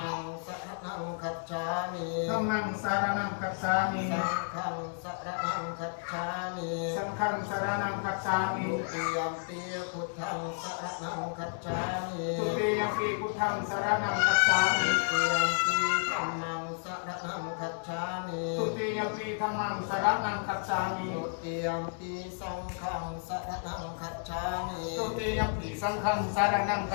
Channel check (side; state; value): right; silent; digital silence